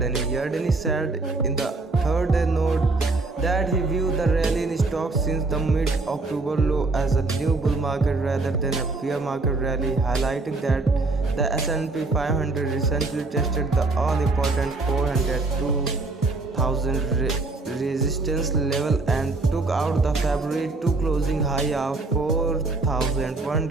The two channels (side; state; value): left; quieter; 3.4 dB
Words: Yardeni said in the third day note that he viewed the rally in stocks since the mid-October low as a new bull market rather than a bear market rally, highlighting that the S&P 500 recently tested the all-important 402,000 resistance level and took out the February 2 closing high of